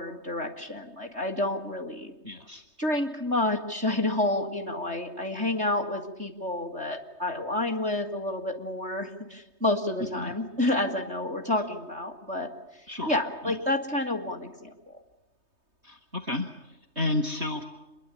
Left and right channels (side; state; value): left; late; 3.2 ms